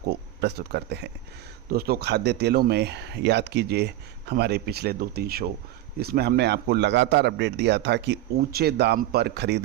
प्रस्तुत करते हैं। दोस्तों, खाद्य तेलों में याद कीजिए हमारे पिछले 2-3 शो, इसमें हमने आपको लगातार अपडेट दिया था कि ऊंचे दाम पर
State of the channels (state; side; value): quieter; left; 14.4 dB